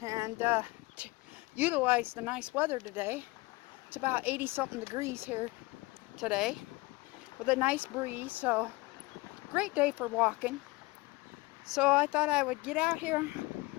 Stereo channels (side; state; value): right; quieter; 22.5 dB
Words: and utilize the nice weather today. It's about 80-something degrees here today with a nice breeze, so great day for walking. So I thought I would get out here